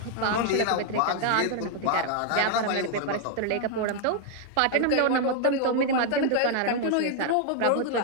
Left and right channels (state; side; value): different; both; correlation 0.00